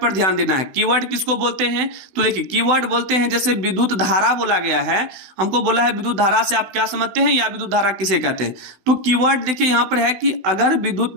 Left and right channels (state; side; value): late; left; 16 ms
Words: पर ध्यान देना है। कीवर्ड किसको बोलते हैं? तो देखिए, कीवर्ड बोलते हैं जैसे विद्युत धारा बोला गया है, हमको बोला है विद्युत धारा से आप क्या समझते हैं या विद्युत धारा किसे कहते हैं। तो कीवर्ड देखिए यहां पर है कि अगर विद्युत